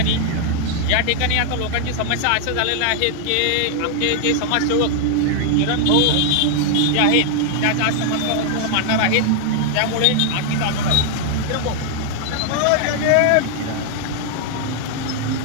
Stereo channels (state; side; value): different; both; correlation 0.00